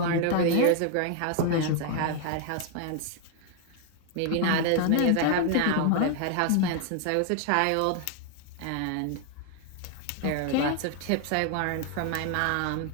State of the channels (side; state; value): both; different; correlation 0.00